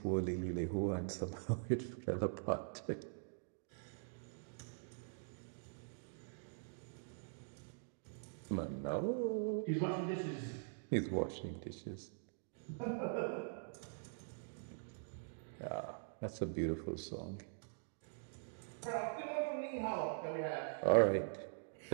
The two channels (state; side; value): silent; left; digital silence